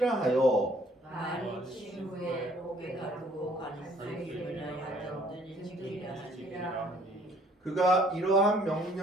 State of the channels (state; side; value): normal; both; correlation 0.60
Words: 하여 많이 친 후에 옥에 가두고 간수이나 하던 징계하시리라 하니 그가 이러한